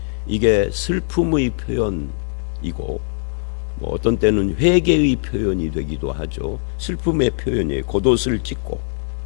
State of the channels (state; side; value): silent; right; digital silence